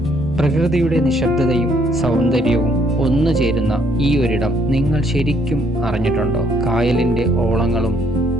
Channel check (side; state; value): both; normal; correlation 0.67